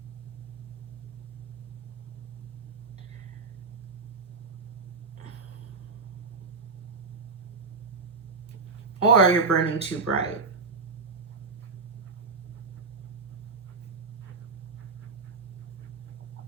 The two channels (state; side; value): quieter; left; 4.3 dB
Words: Or you're burning too bright.